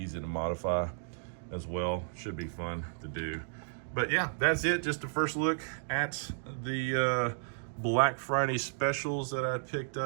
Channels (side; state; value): left; silent; digital silence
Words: to modify as well. Should be fun to do. But yeah, that's it. Just a first look at the Black Friday specials that I picked